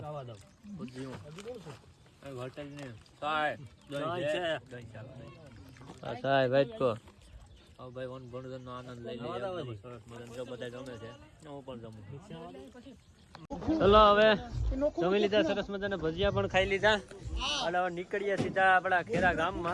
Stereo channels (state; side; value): identical; both; correlation 1.00